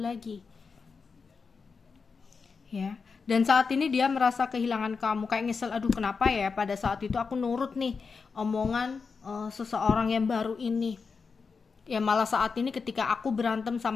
Ya. Dan saat ini dia merasa kehilangan kamu, kayak nyesel, aduh kenapa ya pada saat itu aku nurut nih omongan seseorang yang baru ini. Ya malah saat ini ketika aku berantem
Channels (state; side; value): quieter; right; 5.1 dB